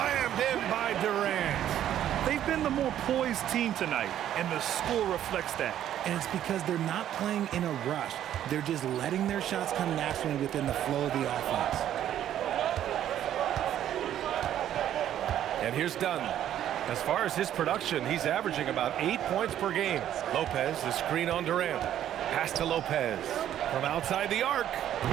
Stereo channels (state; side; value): quieter; left; 11.2 dB